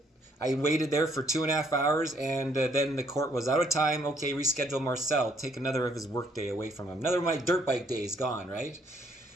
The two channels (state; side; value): normal; both; correlation 0.68